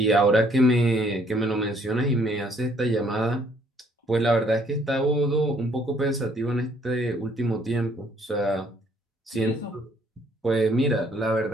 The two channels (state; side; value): normal; both; correlation 0.64